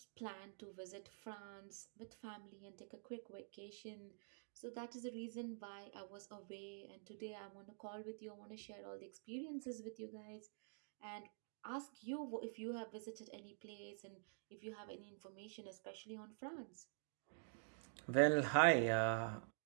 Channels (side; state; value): left; silent; digital silence